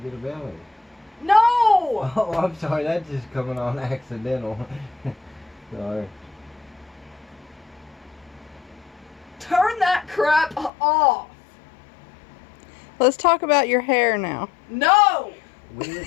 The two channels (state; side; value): drops out; right; at 10.7 s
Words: a belly. No! Oh, I'm sorry, that's just coming on accidental. Sorry. Turn that crap off! Let's talk about your hair now. No! We